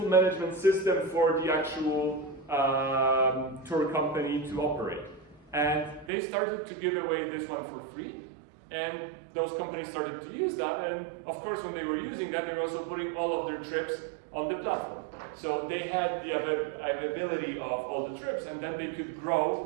management system for the actual tour company to operate. And they started to give away this one for free. And those companies started to use that, and of course when they were using that, they were also putting all of their trips on the platform. So they had the availability of all the trips, and then they could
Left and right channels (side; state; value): left; drops out; at 6.1 s